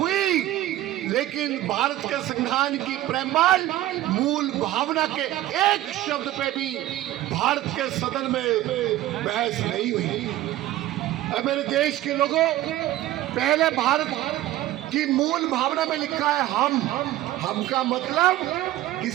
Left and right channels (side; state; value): left; quieter; 14.9 dB